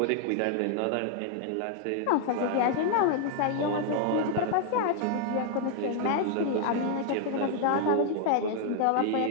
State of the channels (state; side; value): different; both; correlation 0.00